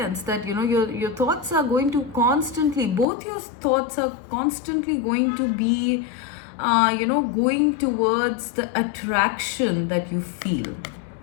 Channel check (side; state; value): right; drops out; at 3.1 s